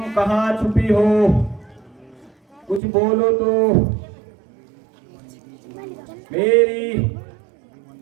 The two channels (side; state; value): left; drops out; at 2.8 s